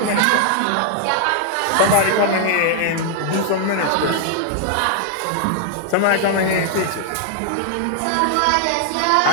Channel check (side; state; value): both; different; correlation 0.00